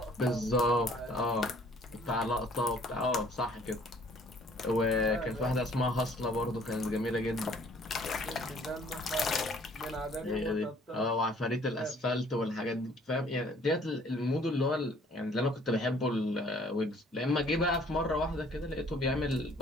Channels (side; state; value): both; normal; correlation 0.58